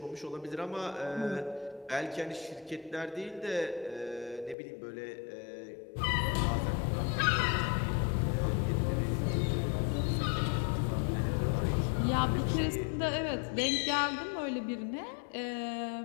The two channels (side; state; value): right; drops out; at 4.5 s